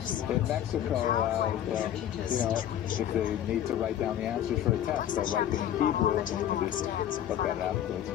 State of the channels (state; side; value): quieter; right; 10.9 dB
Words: in Mexico, if they need to write down the answers for a test, they'll write them in Hebrew and then you can just look at it afterwards.